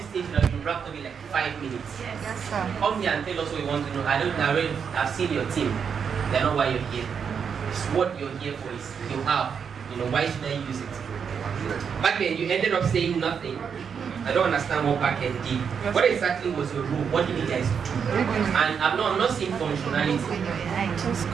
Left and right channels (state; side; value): quieter; left; 6.8 dB